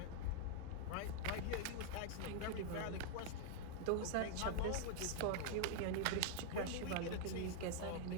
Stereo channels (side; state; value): both; different; correlation 0.00